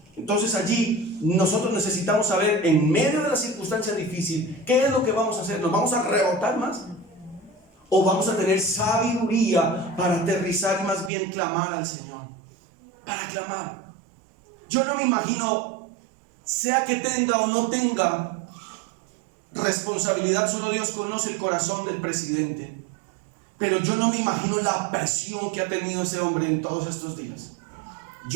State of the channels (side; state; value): left; drops out; at 11.1 s